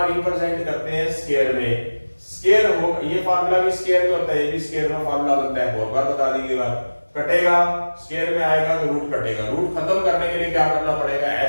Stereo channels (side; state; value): both; inverted; correlation -1.00